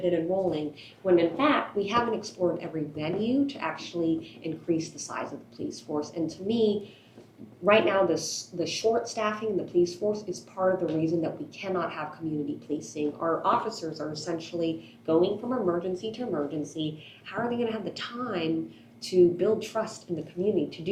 in enrolling, when in fact, we haven't explored every venue to actually increase the size of the police force. And to me, right now, the short staffing in the police force is part of the reason that we cannot have community policing. Our officers are essentially going from emergency to emergency. How are they going to have the time to build trust in the community, to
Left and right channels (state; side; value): identical; both; correlation 1.00